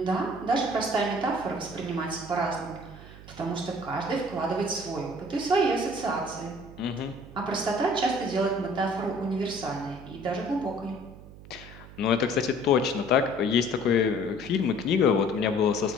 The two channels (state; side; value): noise; right; hum, 17 dB below the sound